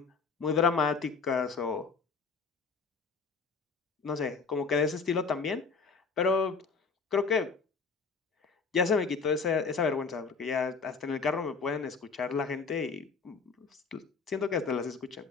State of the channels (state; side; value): quieter; right; 5.0 dB